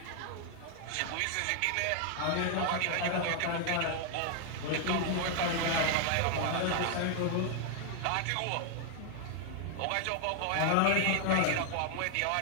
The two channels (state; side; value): different; both; correlation 0.00